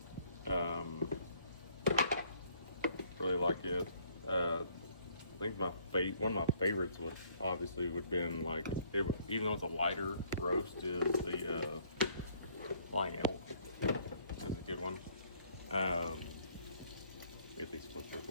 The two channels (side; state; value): both; inverted; correlation -0.62